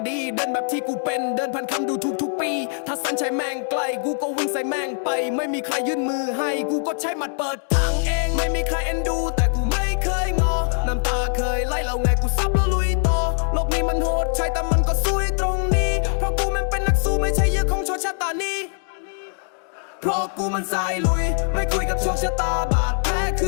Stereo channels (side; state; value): right; silent; digital silence